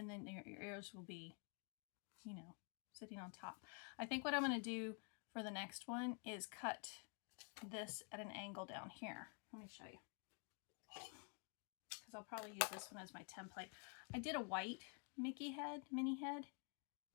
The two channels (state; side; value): quieter; right; 38.5 dB